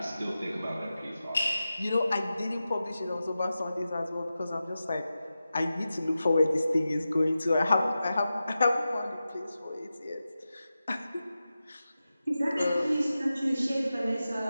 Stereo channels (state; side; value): inverted; both; correlation -0.93